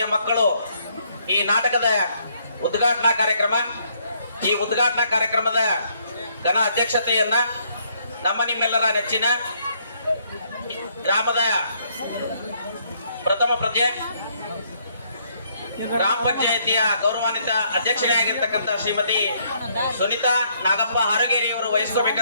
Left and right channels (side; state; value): both; inverted; correlation -0.69